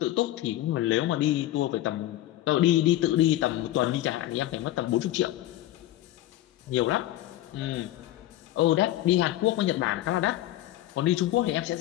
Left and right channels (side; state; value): right; quieter; 14.5 dB